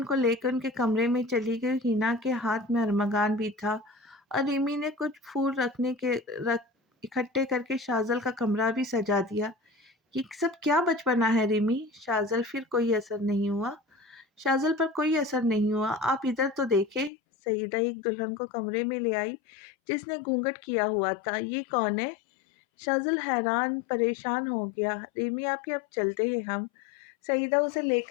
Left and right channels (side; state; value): right; drops out; at 17.1 s